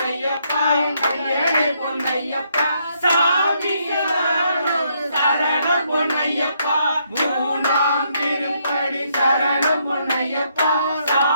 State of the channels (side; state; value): both; inverted; correlation -0.74